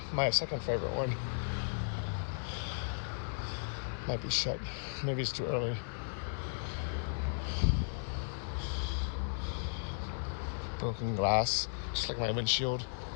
my second favorite one. Might be shut. Maybe it's too early. Broken glass, just like my windshield.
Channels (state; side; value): silent; right; digital silence